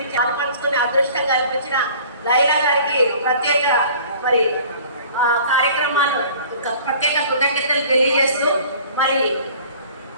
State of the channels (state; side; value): inverted; both; correlation -0.49